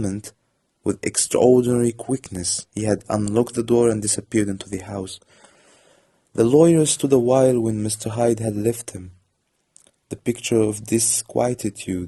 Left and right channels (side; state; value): both; identical; correlation 1.00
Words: with extraordinary quickness, he had unlocked the door and disappeared into the house. The lawyer stood a while when Mr. Hyde had left him, the picture of